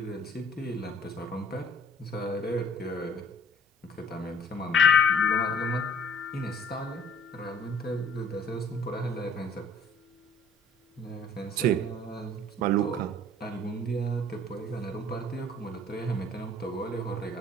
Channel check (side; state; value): both; normal; correlation 0.52